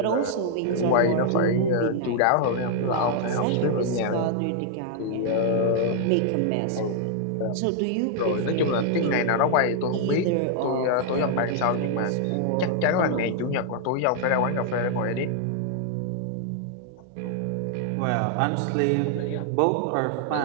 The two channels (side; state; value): both; different; correlation -0.01